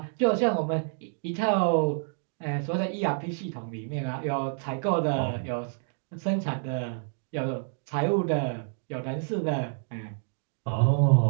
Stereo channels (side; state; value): left; silent; digital silence